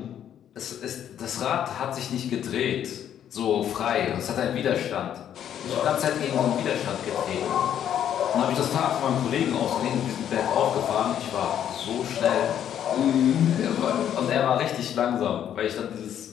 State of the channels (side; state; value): right; quieter; 9.9 dB